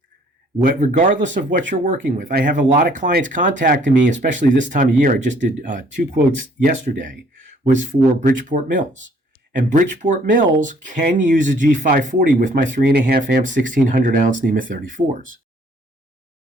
Regardless of what you're working with. I have a lot of clients contacting me, especially this time of year. I just did 2 quotes yesterday, was for Bridgeport Mills. And Bridgeport Mills can use a G540 with my 3.5 amp 1600 ounce NEMA 34s.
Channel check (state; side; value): normal; both; correlation 0.61